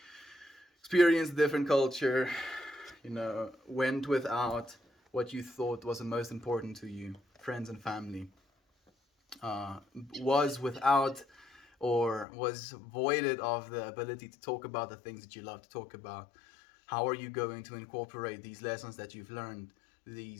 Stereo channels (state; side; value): drops out; right; at 12.2 s